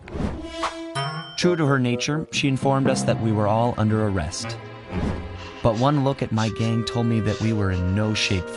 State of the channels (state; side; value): identical; both; correlation 1.00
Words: True to her nature, she informed us that we were all under arrest. But one look at my gang told me that we were in no shape